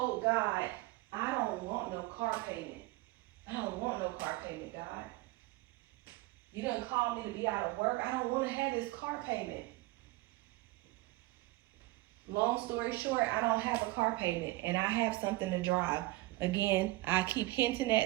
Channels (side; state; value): left; quieter; 19.9 dB